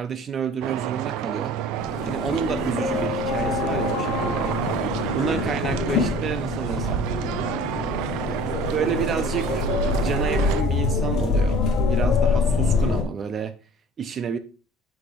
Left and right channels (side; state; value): both; normal; correlation 0.45